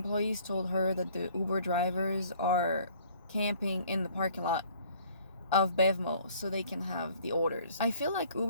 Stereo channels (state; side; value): inverted; both; correlation -0.56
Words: told her that the Uber drivers are camping in the parking lot of Bevmo so they can have the orders. I feel like